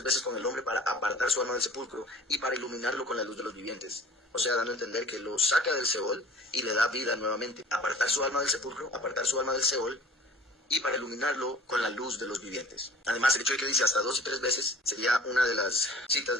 veces con el hombre para apartar su alma del sepulcro y para iluminarlo con la luz de los vivientes. O sea, dando a entender que lo saca del Seol y le da vida nuevamente. Apartar su alma del sepulcro, apartar su alma del Seol y para iluminarlo con la luz de los vivientes. Además, el hecho de que dice hasta 2 y 3 veces sería una de las citas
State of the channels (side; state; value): both; normal; correlation 0.46